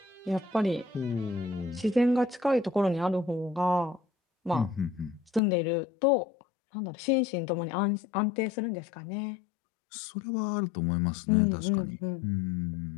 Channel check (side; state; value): right; drops out; at 5.4 s